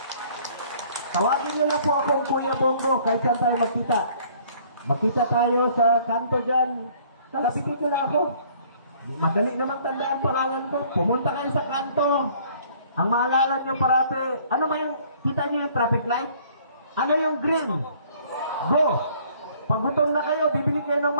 Tawagin nyo lang po akong Kuya Bongo kahit saan tayo magkita. Magkita tayo sa kanto dyan. Kalapitin nyo lang ako. Madali namang tandaan pangalan ko. Pumunta kayo sa kanto. Ang maalala nyo parate, ano ba yung, kita nyo yung traffic light? Ano yung green? Go! Pag gutom na kayo, bibili kayo ng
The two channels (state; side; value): inverted; both; correlation -0.57